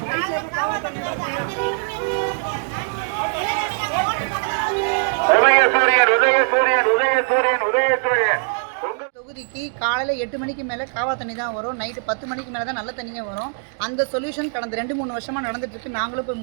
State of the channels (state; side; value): silent; left; digital silence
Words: காவா தண்ணி வருது. தொகுதிக்கு காலையில் 8 மணிக்கு மேலே காவா தண்ணி தான் வரும். நைட்டு 10 மணிக்கு மேலே தான் நல்ல தண்ணியே வரும். அந்த சொல்யூஷன் கடந்த 2-3 வருஷமாக நடந்துட்டுருக்கு. நாங்களும் போய்